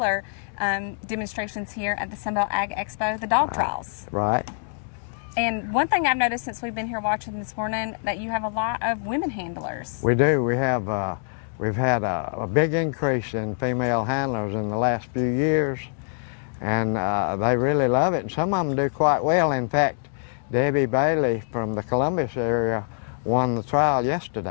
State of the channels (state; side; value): silent; right; digital silence